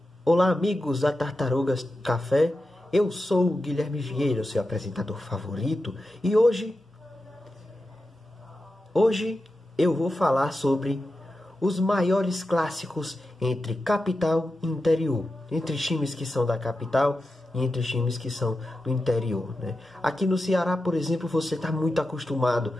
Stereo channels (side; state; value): both; normal; correlation 0.91